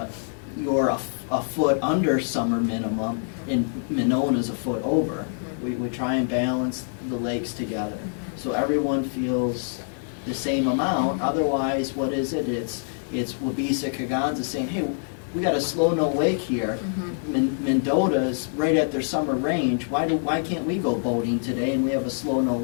you're a foot under summer minimum, and Monona's a foot over. We try and balance the lakes together, so everyone feels the same amount. Otherwise, what is it? It's Waubesa, Kaganza saying, hey, we got a slow no wake here. Mendota's right at their summer range. Why can't we go boating today and we have a slow no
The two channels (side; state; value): right; silent; digital silence